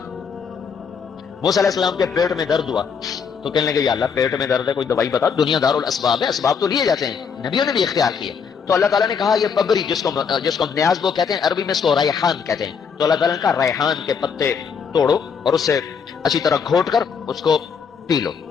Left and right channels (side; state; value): right; quieter; 6.3 dB